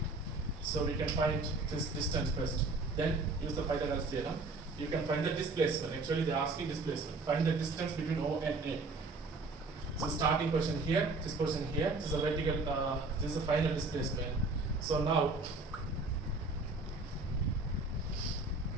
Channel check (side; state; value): left; quieter; 3.4 dB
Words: So we can find this distance first. Then use the Pythagoras theorem. You can find the displacement. Actually, they are asking displacement. Find the distance between O and A. So starting position here, this position here. This is a vertical. This is the final displacement. So now,